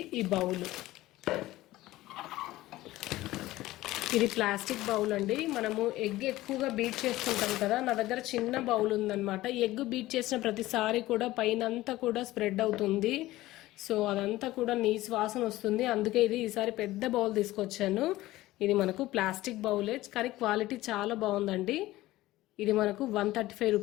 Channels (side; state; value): right; quieter; 16.9 dB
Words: ఈ బౌల్. ఇది ప్లాస్టిక్ బౌల్ అండి. మనము ఎగ్ ఎక్కువగా బీట్ చేసుకుంటాం కదా, నా దగ్గర చిన్న బౌల్ ఉందన్నమాట. ఎగ్ బీట్ చేసిన ప్రతిసారి కూడా పైనంతా కూడా స్ప్రెడ్ అవుతుంది. సో అదంతా కూడా నీసు వాసన వస్తుంది. అందుకే ఇది ఈసారి పెద్ద బౌల్ తీసుకొచ్చాను. ఇది మనకు ప్లాస్టిక్ బౌలే, కానీ క్వాలిటీ చాలా బాగుందండి. ఇది మనకు 135